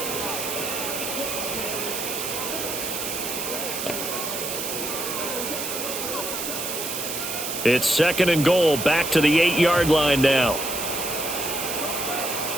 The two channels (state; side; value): noise; right; hiss, 4 dB below the sound